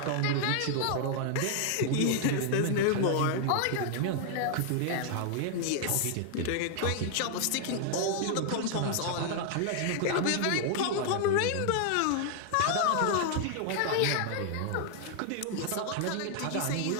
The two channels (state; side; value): different; both; correlation 0.00